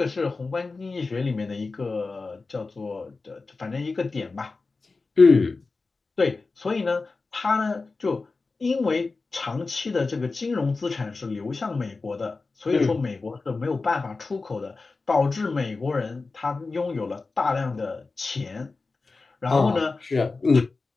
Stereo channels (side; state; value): right; quieter; 3.9 dB